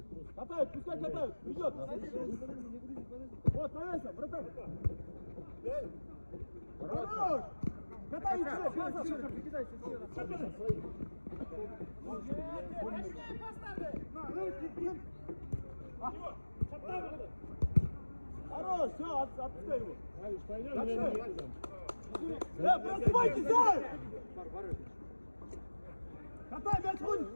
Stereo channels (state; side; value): inverted; both; correlation -1.00